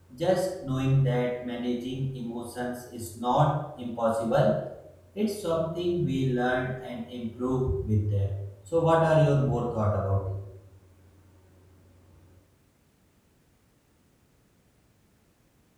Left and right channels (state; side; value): identical; both; correlation 1.00